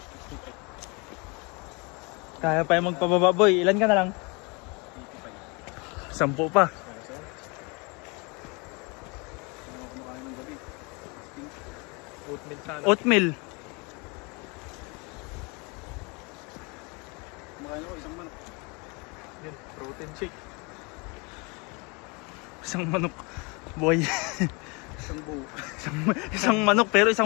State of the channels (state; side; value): quieter; right; 29.6 dB